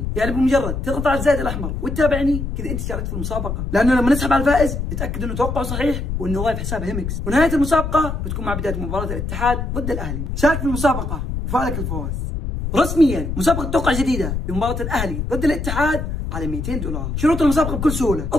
يعني بمجرد تضغط على الزائد الأحمر وتتابعني كذا انت شاركت في المسابقة، لأنه لما نسحب على الفائز نتأكد انه توقعه صحيح وانه ضايف حساب هيمكس، ونهاية المسابقة بتكون مع بداية مباراة الاتحاد ضد الأهلي. شارك في المسابقة وفعلك الفوز. رسميا مسابقة توقع جديدة لمباراة الأهلي ضد الاتحاد على 200 دولار. شروط المسابقة بكل سهولة،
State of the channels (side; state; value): left; noise; rumble, 4 dB below the sound